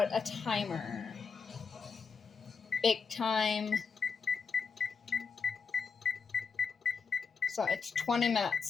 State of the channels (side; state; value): right; quieter; 5.4 dB